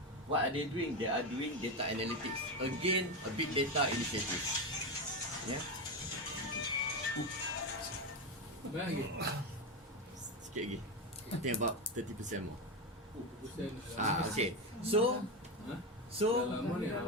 What are they doing? They are doing data analytics. Again, a big data initiative. Yeah. Sikit lagi. I think about 30% more. Okay. So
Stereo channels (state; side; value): normal; both; correlation 0.13